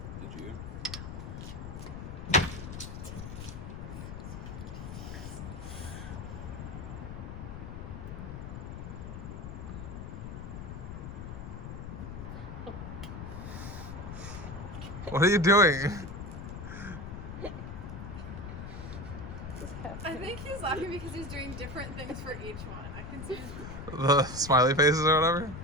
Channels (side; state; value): left; noise; rumble, 8 dB below the sound